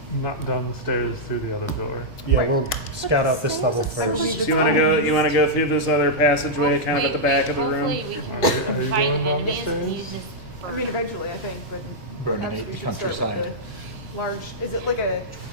Not down the stairs through the other door. Yeah, Right. we'll scout out this level Stairs are first. So you want to go through this other passageway, kind of at the back of the room. Hopefully we Are can you find going down the enemies and stairs? use this for. I mean, eventually, I think, but Burning perhaps we the should start with countryside. the large. Is it like a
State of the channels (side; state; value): both; normal; correlation -0.07